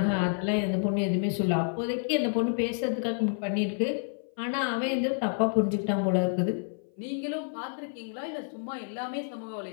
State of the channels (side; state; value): right; silent; 56 dB below the other